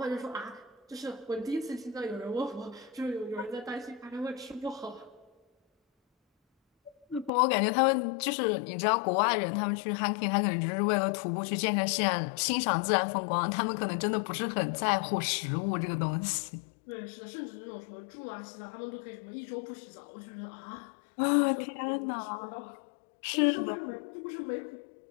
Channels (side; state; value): right; drops out; at 7.3 s